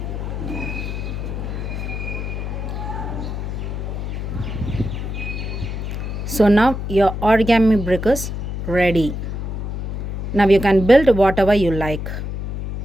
So now your origami brick is ready. Now you can build whatever you like.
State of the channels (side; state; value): left; noise; hum, 4 dB below the sound